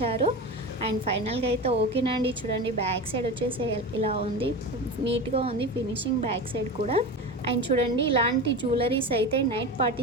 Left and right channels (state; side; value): normal; both; correlation 0.26